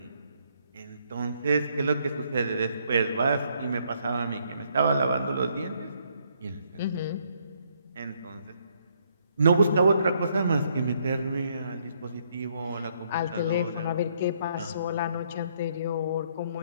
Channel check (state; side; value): inverted; both; correlation -0.70